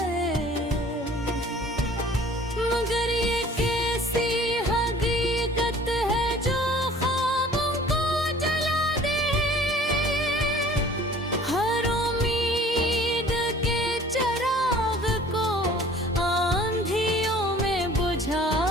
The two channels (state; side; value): normal; both; correlation 0.50